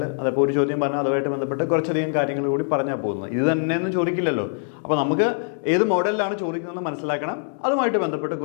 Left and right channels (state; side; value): silent; right; 63 dB below the other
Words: അതപ്പോൾ ഒരു ചോദ്യം പറഞ്ഞാൽ അതുമായിട്ട് ബന്ധപ്പെട്ട് കുറച്ചധികം കാര്യങ്ങൾ കൂടി പറഞ്ഞാൽ പോകുന്നത്. ഇത് തന്നെയൊന്നും ചോദിക്കില്ലല്ലോ. അപ്പോൾ നമുക്ക് ഏത് മോഡലിലാണ് ചോദിക്കുന്നതെന്ന് മനസ്സിലാക്കണം. അതുമായിട്ട് ബന്ധപ്പെട്ട്